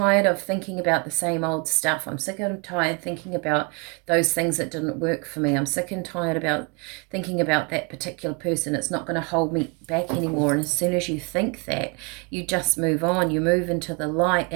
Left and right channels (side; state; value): left; quieter; 31.7 dB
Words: of thinking about the same old stuff. I'm sick and tired thinking about those things that didn't work for me. I'm sick and tired about thinking about that particular person. It's not going to hold me back anymore. And as soon as you think that, you just move on. You move into the light,